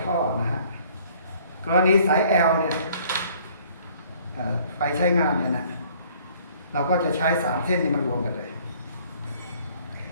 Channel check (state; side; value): inverted; both; correlation -0.57